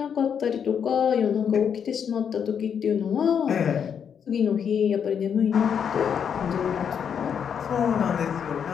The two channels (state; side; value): quieter; right; 7.6 dB